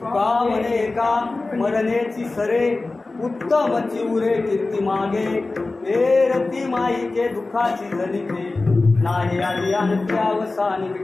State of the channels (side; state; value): right; quieter; 3.4 dB